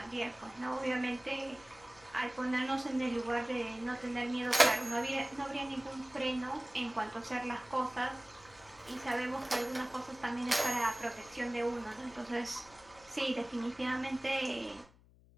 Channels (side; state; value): left; noise; hum, 26 dB below the sound